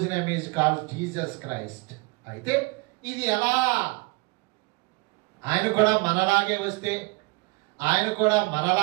name is called Jesus Christ. అయితే ఇది ఎలా? ఆయన కూడా మనలాగే వస్తే, ఆయన కూడా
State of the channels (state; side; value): quieter; left; 27.6 dB